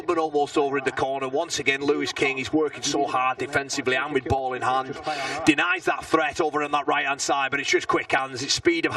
almost over in the corner. Once again, Lewis King, he's working so hard defensively and with ball in hand. Denies that threat over on that right-hand side, but it's just quick hands. It's speed of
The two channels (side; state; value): both; identical; correlation 1.00